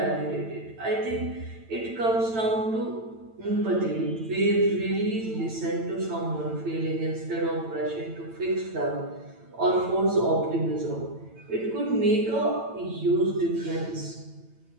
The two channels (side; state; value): left; late; 9.0 ms